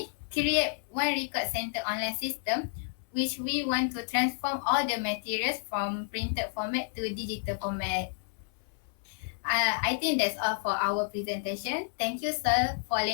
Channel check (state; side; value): silent; right; 57 dB below the other